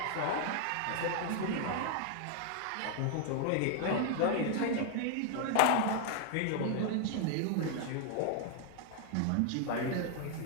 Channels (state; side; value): different; both; correlation 0.00